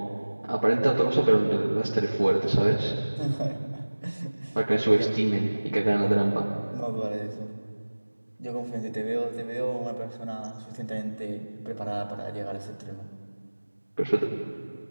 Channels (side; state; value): both; inverted; correlation -1.00